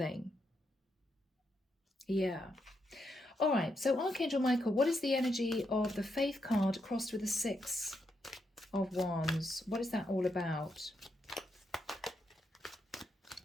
Yeah. All right. So Archangel Michael, what is the energy of the Faith card crossed with the Six of Wands? What is that all about?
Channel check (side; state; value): both; normal; correlation 0.81